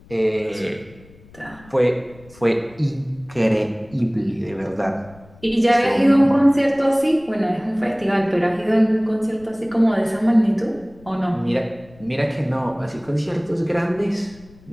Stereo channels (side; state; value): left; noise; rumble, 25 dB below the sound